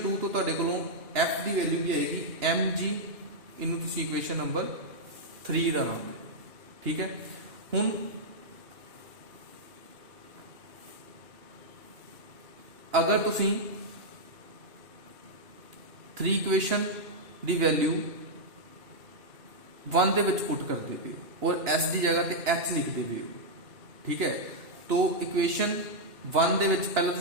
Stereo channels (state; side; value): late; left; 2.9 ms